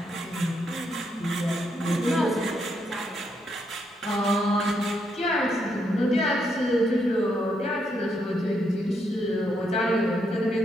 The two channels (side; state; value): both; normal; correlation 0.77